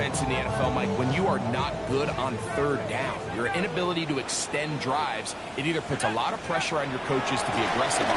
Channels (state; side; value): identical; both; correlation 1.00